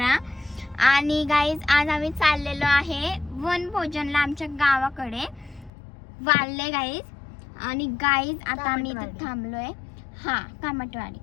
आणि गाईज आज आम्ही चाललेलो आहे वनभोजनला आमच्या गावाकडे वाळले गाईज. आणि गाईज आता आम्ही इथे थांबलोय. हा, कामटवाडी.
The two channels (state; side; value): drops out; right; at 5.7 s